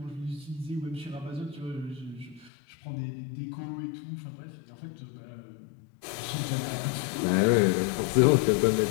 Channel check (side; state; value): right; drops out; at 2.5 s